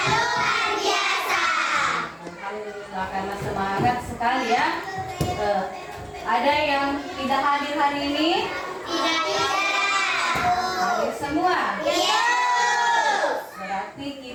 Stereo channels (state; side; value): identical; both; correlation 1.00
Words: luar biasa. Alhamdulillah, karena semangat sekali ya. Ada yang tidak hadir hari ini? Tidak. Hadir semua. Iya. Berarti